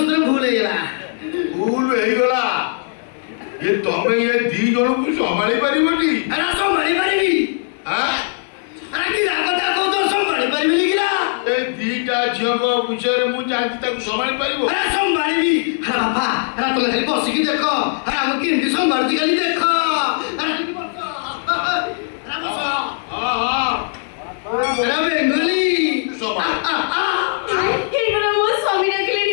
ଭୁଲ ହେଇଗଲା ଭୁଲ ହେଇଗଲା ଏ ତମେ ଏ ଦି ଜଣକୁ ସମ୍ଭାଳି ପାରିବନି ସମ୍ଭାଳି ପାରିବି କି ରାଗଟା କହୁଛ ସମ୍ଭାଳି ପାରିବିନି କିରା ଏ ଦିଟା ଝିଅଙ୍କ ବିଷୟରେ ମୁଁ ଜାଣିଛି ତାକୁ ସମ୍ଭାଳି ପାରିବ ସମ୍ଭାଳିବି ବାପା ତମେ ଖାଲି ବସିକି ଦେଖ ଆମେ କେମିତି ସମ୍ଭାଳୁଛି ଖାଲି ଦେଖ ବେଙ୍ଗଲି ମୋ ସ୍ୱାମୀ ଡାକିଲେଣି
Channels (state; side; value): silent; right; digital silence